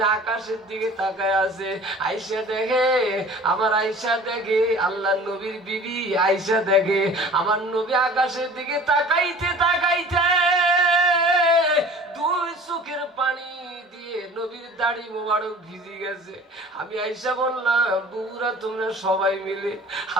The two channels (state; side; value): normal; both; correlation 0.45